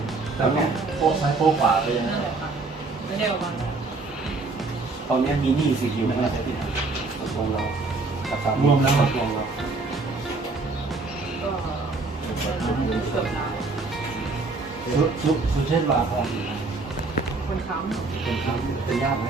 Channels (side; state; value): left; quieter; 3.6 dB